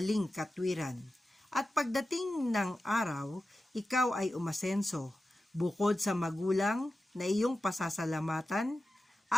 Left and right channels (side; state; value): both; normal; correlation 0.93